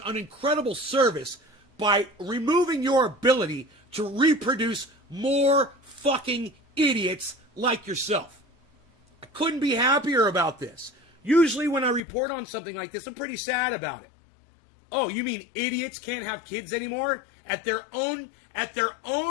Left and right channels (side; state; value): right; drops out; at 12.0 s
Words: incredible service by removing your ability to reproduce more fucking idiots like yourself. I couldn't be happier about this. Usually when I report on something like this, I'm pretty sad about it. Oh, you mean idiots can't have kids anymore? At their own